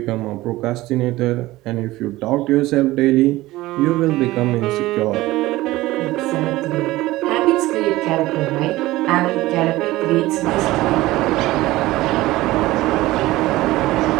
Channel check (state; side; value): quieter; left; 17.9 dB